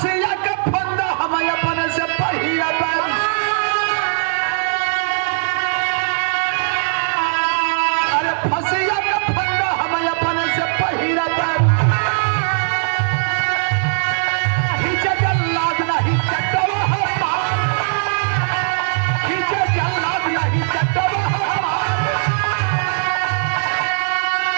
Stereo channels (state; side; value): silent; left; digital silence